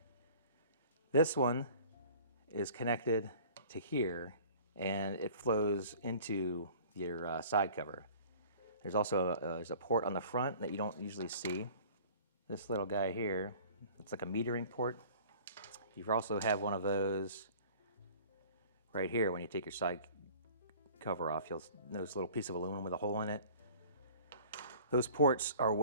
This one is connected to here, and it flows into your side cover. There's also there's a port on the front that you don't usually see. This little guy here, it's like a metering port. You also have one of those right here when you take your side cover off. You'll notice a little piece of aluminum with a hole in it. Those ports are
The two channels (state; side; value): inverted; both; correlation -0.47